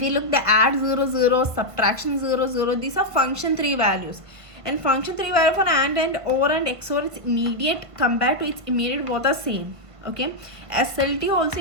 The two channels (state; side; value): late; left; 1.5 ms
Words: you look the add 0 0, subtraction 0 0, these are function 3 values. And function 3 value for AND and OR and XOR is immediate compared to its immediate, both are same. Okay, SLT also